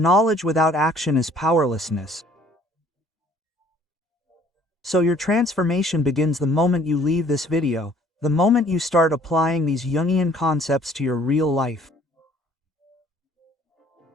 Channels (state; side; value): normal; both; correlation 0.57